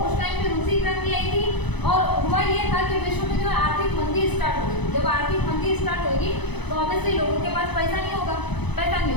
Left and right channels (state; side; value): late; right; 0.99 ms